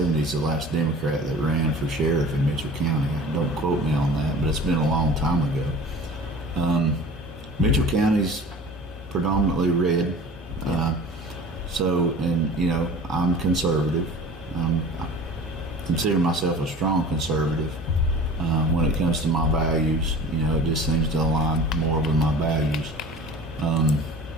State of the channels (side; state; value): both; normal; correlation 0.41